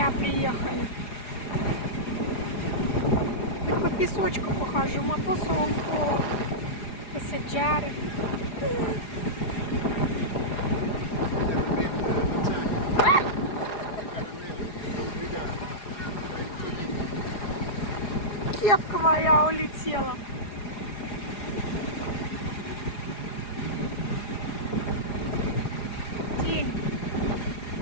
приехали. Хоть по песочку похожу, ma posso un po' passeggiare. Кепка моя улетела. День.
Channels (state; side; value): late; right; 4.9 ms